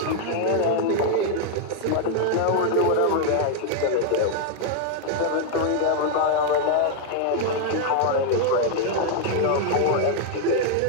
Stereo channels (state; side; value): different; both; correlation 0.00